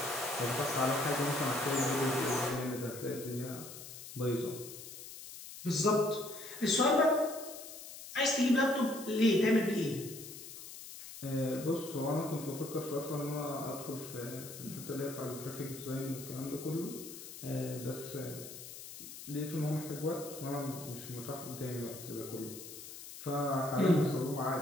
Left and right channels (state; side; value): noise; left; hiss, 12 dB below the sound